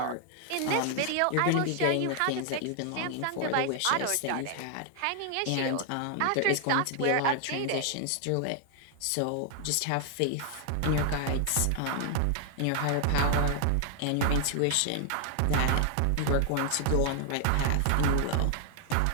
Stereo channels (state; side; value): different; both; correlation 0.00